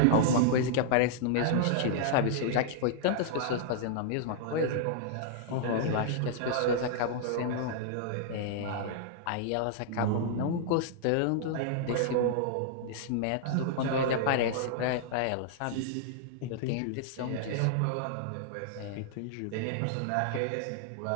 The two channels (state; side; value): different; both; correlation -0.01